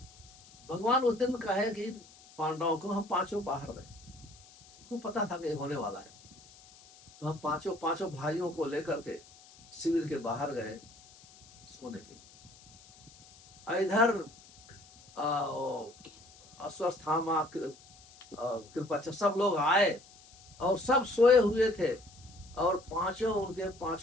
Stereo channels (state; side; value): noise; left; hiss, 24 dB below the sound